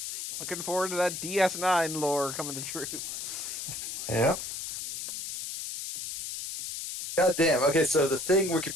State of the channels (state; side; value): noise; left; hiss, 6 dB below the sound